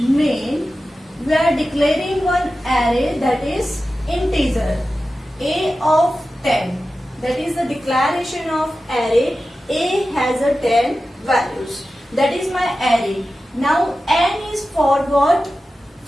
We are declaring one array, that is integer a of 10. That is the declaration of array. A has a 10 values. That is my array. Now n is for what?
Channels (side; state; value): both; normal; correlation 0.94